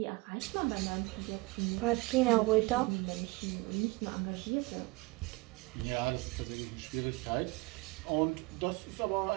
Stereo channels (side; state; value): left; quieter; 24.3 dB